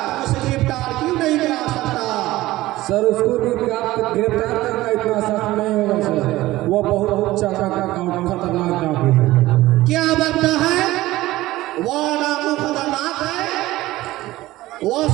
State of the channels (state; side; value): quieter; left; 17.2 dB